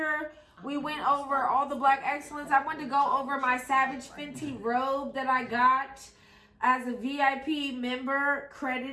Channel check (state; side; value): identical; both; correlation 1.00